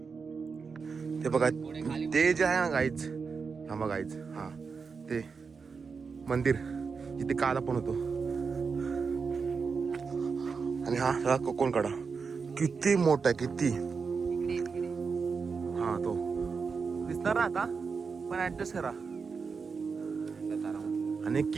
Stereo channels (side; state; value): left; quieter; 5.2 dB